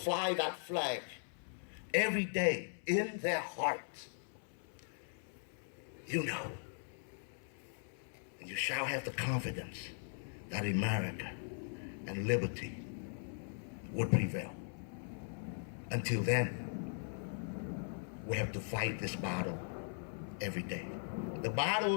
that flag every day in their hearts, you know, and you shall have the confidence that America and liberty would prevail. Until then, we have to fight this battle every day. The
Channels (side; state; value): right; silent; 51 dB below the other